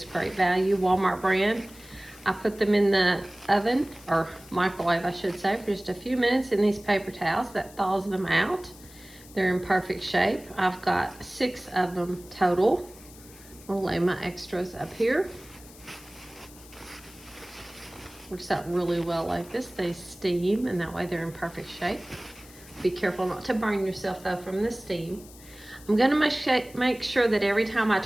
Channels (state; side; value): noise; left; hiss, 21 dB below the sound